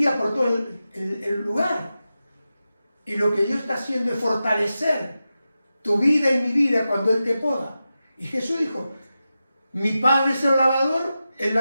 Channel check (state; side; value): inverted; both; correlation -0.92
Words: por todo el lugar. Y lo que Dios está haciendo es fortalecer tu vida y mi vida cuando Él te poda. Y Jesús dijo, mi Padre es el